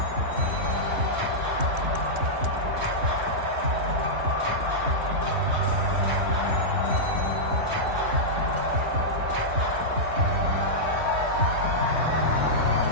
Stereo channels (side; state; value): left; late; 3.1 ms